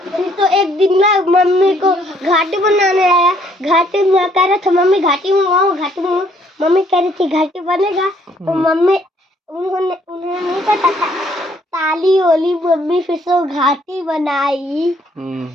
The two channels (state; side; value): normal; both; correlation 0.65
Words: तो एक दिन ना मम्मी को घाटी बनाने आया, घाटी में कह रहा था मम्मी घाटी मंगाओ, घाटी मंगाओ। मम्मी कह रही थी घाटी बनेगा, तो मम्मी उन्होंने नहीं पता था, ताली ओली मम्मी फिर से घाटी बनाई।